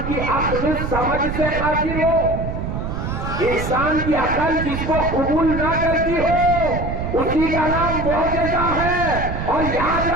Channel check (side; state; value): right; noise; rumble, 4 dB below the sound